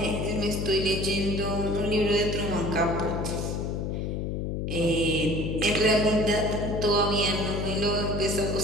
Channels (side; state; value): left; noise; hum, 2 dB below the sound